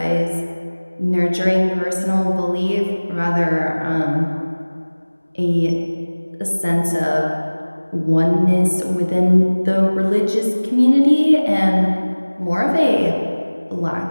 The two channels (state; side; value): inverted; both; correlation -1.00